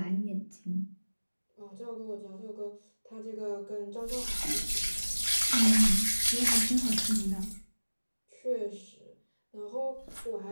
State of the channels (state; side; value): inverted; both; correlation -1.00